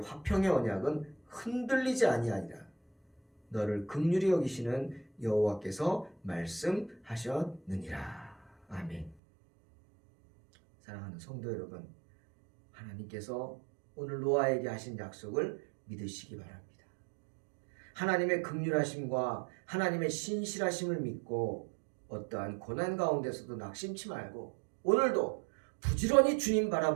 화평의 언약은 흔들리지 아니하리라. 너를 긍휼히 여기시는 여호와께서 말씀하셨느니라. 아멘. 사랑하는 성도 여러분, 하나님께서 오늘 노아에게 하신 약속을 믿으시기 바랍니다. 하나님의 긍휼하심과 하나님의 신실하심을 믿고 어떠한 고난 가운데서도 낙심치 말고 오늘도 부지런히 주님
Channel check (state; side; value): drops out; left; at 9.2 s